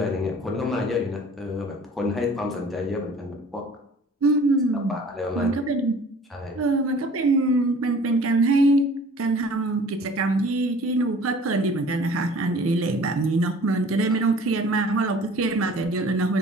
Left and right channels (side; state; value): both; normal; correlation 0.48